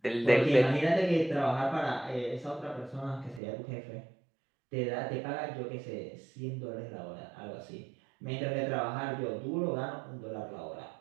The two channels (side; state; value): left; drops out; at 3.4 s